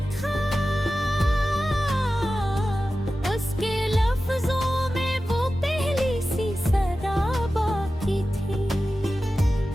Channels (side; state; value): both; normal; correlation 0.94